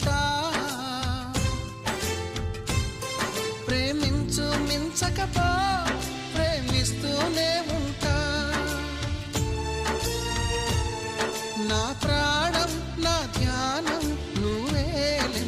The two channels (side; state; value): both; identical; correlation 1.00